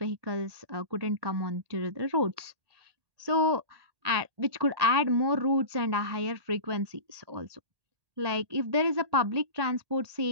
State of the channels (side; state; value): left; late; 1.8 ms